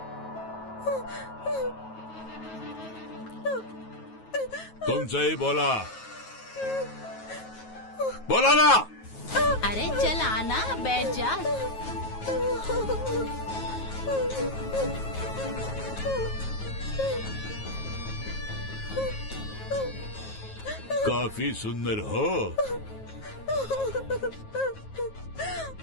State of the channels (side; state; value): right; late; 9.3 ms